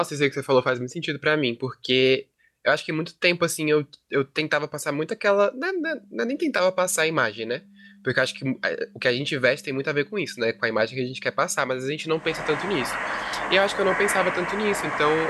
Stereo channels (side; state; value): both; identical; correlation 1.00